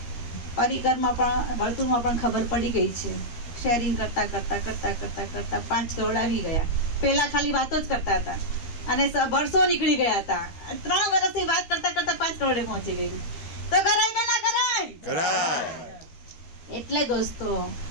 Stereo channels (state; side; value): late; right; 13 ms